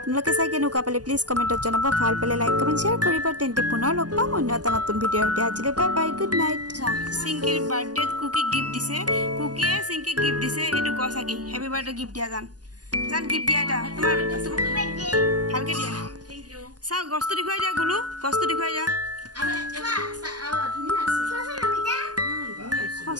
চাই কেনেকুৱা পালে প্লিজ কমেণ্টত জনাব ভাল পালে লাইক কমেণ্ট শ্বেয়াৰ কৰিব তেন্তে পুনৰ লগ পাম অন্য এটা নতুন ভিডিঅ'ৰ সৈতে আজিলৈ বাই বাই গুড নাইট চিংকিৰ বাৰ্থডেত কুকি গিফ্ট দিছে কুকিয়ে চিংকিক গিফ্ট দিছে এইটো ক চাকি হেপী বাৰ্থডে গিফ্ট দিয়া জান গিফ্ট দিয়া এটা তোমাৰ ভালকৈ দিয়া চাওক গছটো দেখুৱাই দিয়া গুলু গছটো দেখুৱাই দিয়া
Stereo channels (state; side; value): late; left; 0.69 ms